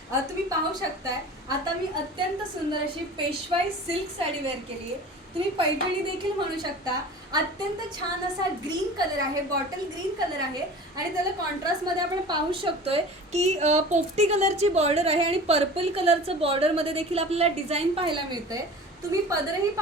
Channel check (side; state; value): both; normal; correlation 0.39